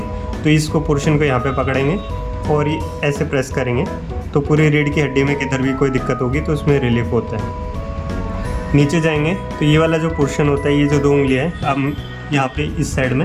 तो इसको पोर्शन को यहाँ पे पकड़ेंगे और ये ऐसे प्रेस करेंगे तो पूरी रीढ़ की हड्डी में किधर भी कोई दिक्कत होगी तो उसमें रिलीफ होता है। नीचे जाएंगे तो ये वाला जो पोर्शन होता है, ये जो 2 उंगलियाँ हैं, अब यहाँ पे इस साइड में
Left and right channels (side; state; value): both; identical; correlation 1.00